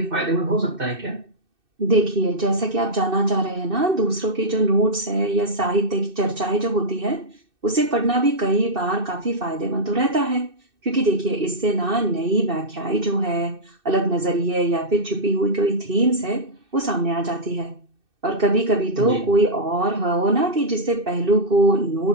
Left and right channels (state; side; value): late; left; 2.6 ms